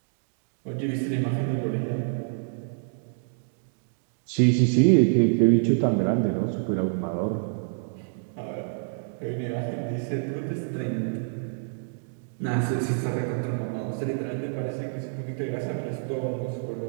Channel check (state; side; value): silent; left; digital silence